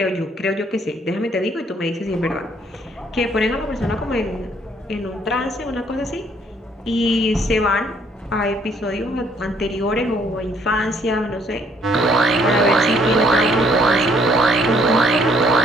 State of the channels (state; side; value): normal; both; correlation 0.64